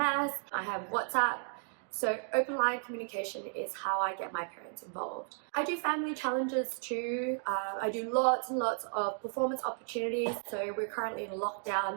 I have WhatsApp. So open line communication is how I get my parents involved. I do family challenges too. I do lots and lots of performance opportunities. So we're currently in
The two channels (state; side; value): silent; left; 55 dB below the other